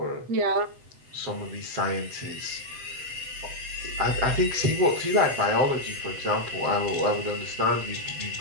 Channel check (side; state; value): left; late; 8.0 ms